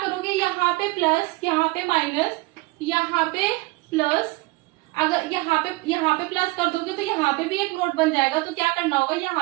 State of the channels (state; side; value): quieter; left; 22.4 dB